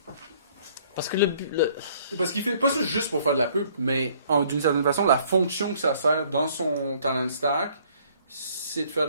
Parce que le but. Parce qu'il fait pas ça juste pour faire de la pub, mais d'une certaine façon, la fonction que ça sert dans son talent stack, c'est de faire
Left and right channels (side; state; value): both; inverted; correlation -0.60